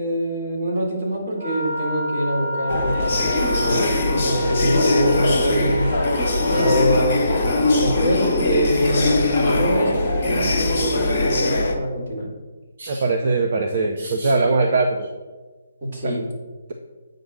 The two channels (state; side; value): inverted; both; correlation -0.76